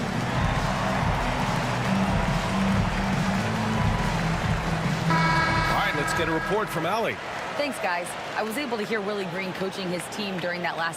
Let's get a report from Allie. Thanks, guys. I was able to hear Willie Green coaching his team during that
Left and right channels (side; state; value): both; identical; correlation 1.00